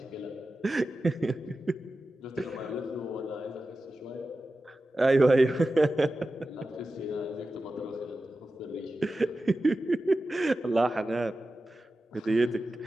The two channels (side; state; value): both; normal; correlation 0.93